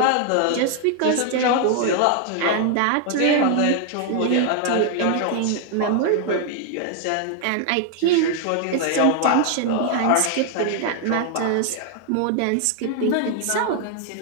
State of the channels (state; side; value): different; both; correlation 0.00